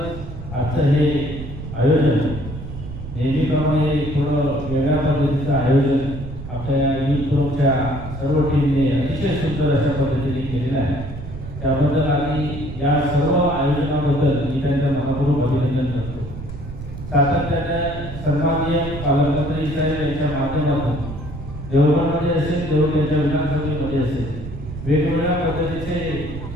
आजचं हे आयोजन नेहमीप्रमाणे थोडं वेगळ्या पद्धतीचं आयोजन आपल्या युथ फोरमच्या सर्व टीमने अतिशय सुंदर अशा पद्धतीने केलेलं आहे। त्याबद्दल आणि या सर्व आयोजनाबद्दल मी त्यांचं मनपूर्वक अभिनंदन करतो। सातत्याने सन्माननीय पालकमंत्री साहेब यांच्या माध्यमातून देवगडमध्ये असेल, देवगडच्या विधानसभेमध्ये असेल, वेगवेगळ्या पद्धतीचे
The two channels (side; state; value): right; noise; rumble, 11 dB below the sound